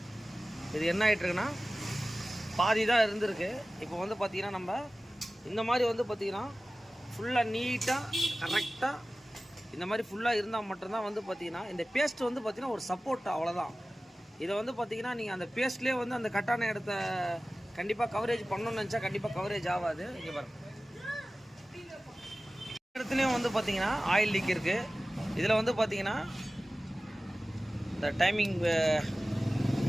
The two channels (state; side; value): normal; both; correlation 0.96